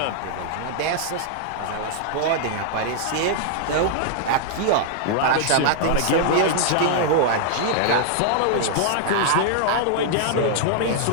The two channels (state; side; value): different; both; correlation -0.01